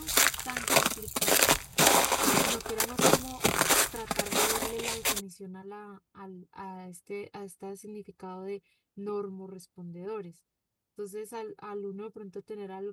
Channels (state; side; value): identical; both; correlation 1.00